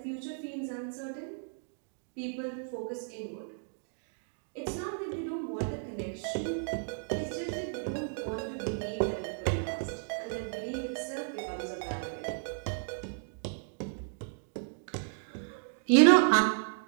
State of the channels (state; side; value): silent; left; digital silence